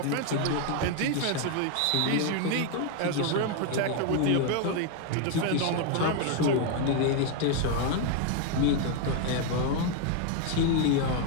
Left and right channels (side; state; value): both; different; correlation 0.01